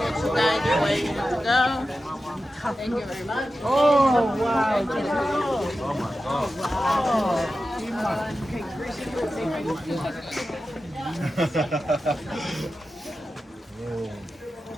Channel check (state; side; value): normal; both; correlation 0.93